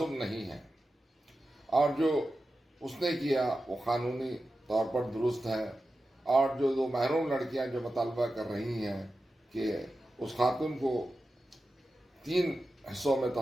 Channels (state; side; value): normal; both; correlation 0.92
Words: نہیں ہے، اور جو اس نے کیا وہ قانونی طور پر درست ہے۔ اور جو 2 محروم لڑکیاں جو مطالبہ کر رہی ہیں کہ اس خاتون کو 3 حصوں میں